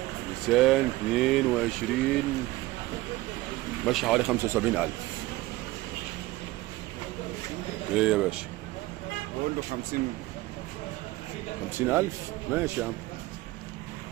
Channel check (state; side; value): quieter; left; 18.7 dB